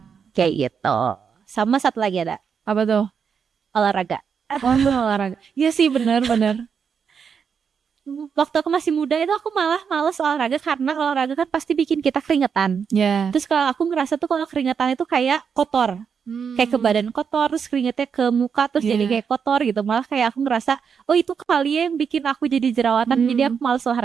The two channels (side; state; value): left; quieter; 6.7 dB